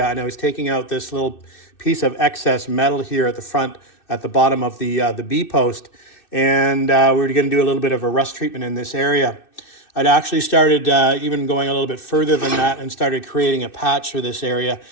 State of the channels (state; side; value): late; right; 2.6 ms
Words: and I was taking out this little piece of excess metal here at the front, at the bottom of the B post, and we were going to do a little bit of a rust treatment in this area. I'd actually started even going a little bit further than that and started creating a patch for this area.